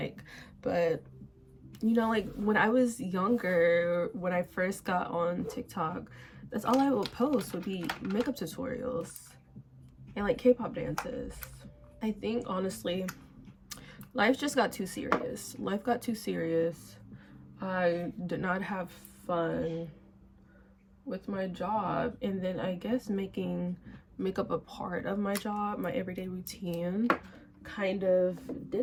But you know, like when I was younger, when I first got on TikTok, that's all I would post would be makeup tutorials and like K-pop dances. I think honestly, life just got too serious. Life got too serious. I did not have fun with my job, and then I guess making makeup a part of my job, my everyday routine, kind of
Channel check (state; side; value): identical; both; correlation 1.00